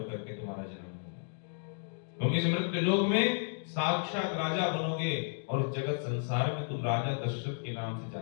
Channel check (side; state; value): right; silent; digital silence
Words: के तुम्हारा जन्म होगा। तुम इस मृत्यु लोक में साक्षात राजा बनोगे और जगत संसार में तुम राजा दशरथ के नाम से